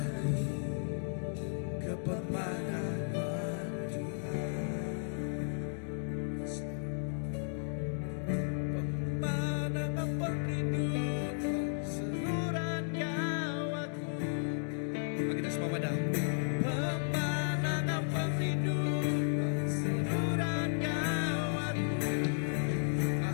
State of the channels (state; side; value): silent; right; digital silence